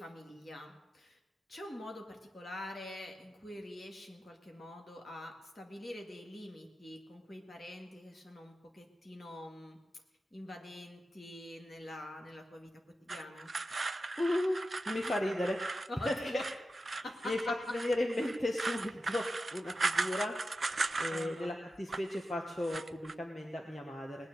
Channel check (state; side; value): normal; both; correlation 0.92